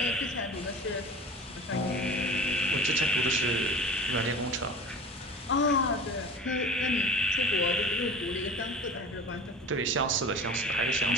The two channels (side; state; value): both; normal; correlation 0.38